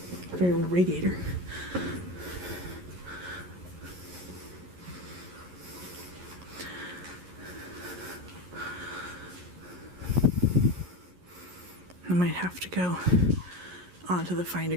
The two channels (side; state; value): left; late; 11 ms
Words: Very old radiator. I might have to go onto the Find a